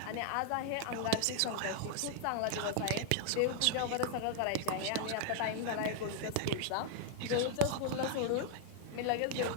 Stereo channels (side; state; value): both; different; correlation 0.00